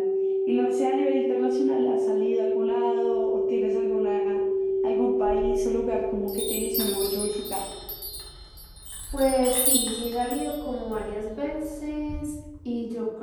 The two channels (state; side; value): identical; both; correlation 1.00